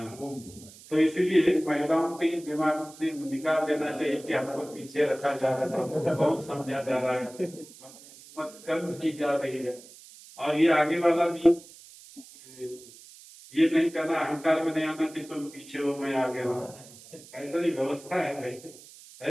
तो इसीलिए महिलाओं के दिमाग से निकाल देना चाहिए कि हमको पीछे रखा जा रहा है, कौन समझा जा रहा है, कर्म की जा रही है। और ये आगे वाला भी ये नहीं करना, अहंकार में नहीं आना कि तुम पीछे हो मैं आगे हूँ, ऐसा ही व्यवस्था है भाई।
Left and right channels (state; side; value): noise; right; hiss, 20 dB below the sound